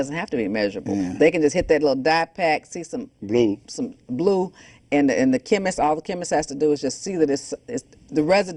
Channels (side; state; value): both; identical; correlation 1.00